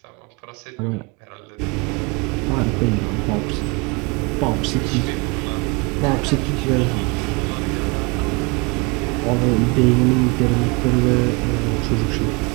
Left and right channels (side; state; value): left; quieter; 27.9 dB